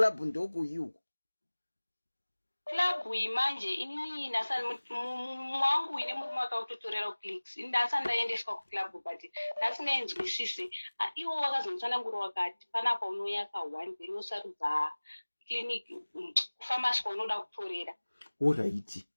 ndo kuyuko. Club imanje inini nasani mwangu ine murume akautotorera clicks ndasani ndaendeswa kuclub but ndasingaenzwisise iwo wakazonditsanangura wakati panapa unouya ka1 then wosarudza clinic kufamasi kwaunoda kutorera. Alright.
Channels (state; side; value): inverted; both; correlation -1.00